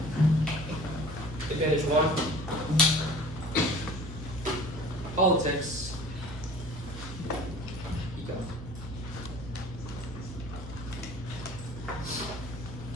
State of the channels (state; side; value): normal; both; correlation 0.45